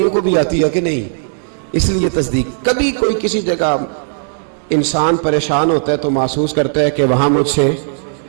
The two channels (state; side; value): silent; left; digital silence